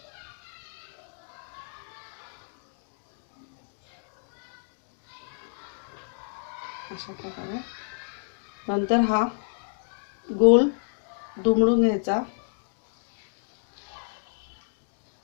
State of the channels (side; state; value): right; silent; digital silence